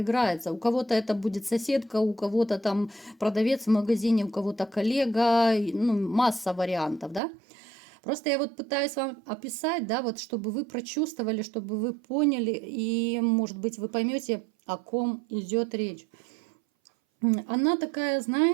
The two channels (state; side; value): drops out; left; at 7.2 s